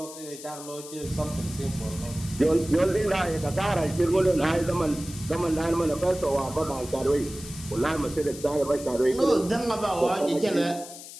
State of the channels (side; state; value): left; noise; hiss, 14 dB below the sound